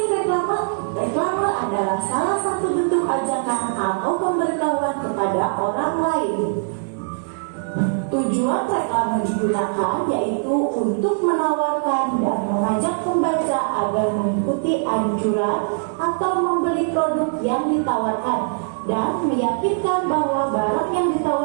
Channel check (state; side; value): silent; left; digital silence